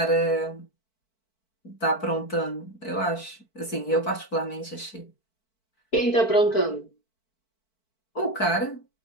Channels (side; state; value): right; late; 4.5 ms